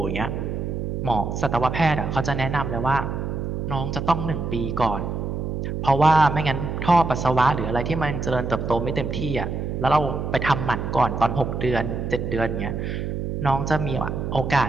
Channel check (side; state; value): right; noise; hum, 3 dB below the sound